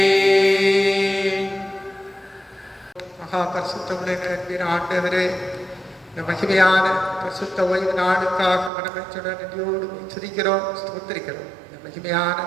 மகா பரிசுத்தமுள்ள அன்பின் ஆண்டவரே, இந்த மகிமையான பரிசுத்த ஓய்வு நாளுக்காக மனமெச்சுடன் நன்றியோடு துதிக்கிறோம், ஸ்தோத்திரிக்கிறோம். இந்த மகிமையான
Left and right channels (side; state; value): left; drops out; at 8.7 s